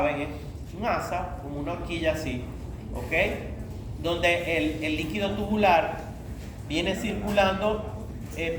es un asa, como una horquilla así, ¿ok? Donde el líquido tubular viene circulando,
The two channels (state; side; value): identical; both; correlation 1.00